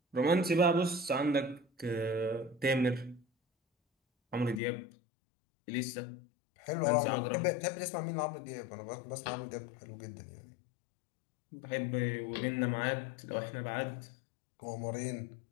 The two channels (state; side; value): drops out; right; at 4.6 s